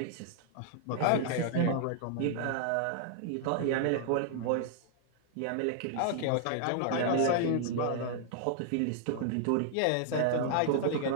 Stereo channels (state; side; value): different; both; correlation -0.01